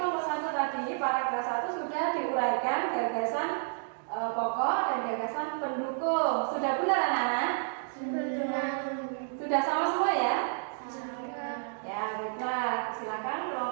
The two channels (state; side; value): silent; left; digital silence